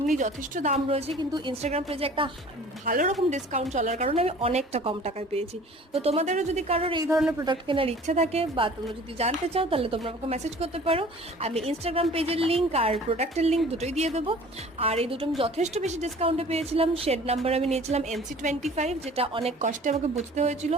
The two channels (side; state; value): both; normal; correlation 0.47